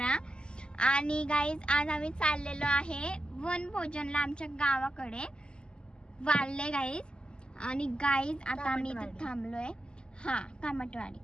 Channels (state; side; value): late; right; 0.049 ms